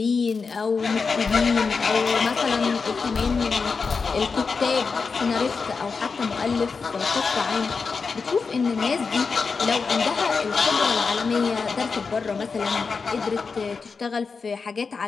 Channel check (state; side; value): quieter; right; 4.9 dB